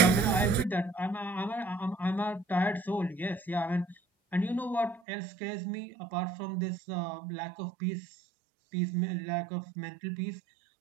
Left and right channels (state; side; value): drops out; left; at 5.0 s